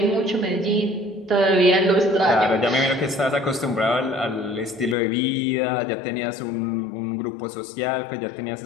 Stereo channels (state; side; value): drops out; right; at 5.0 s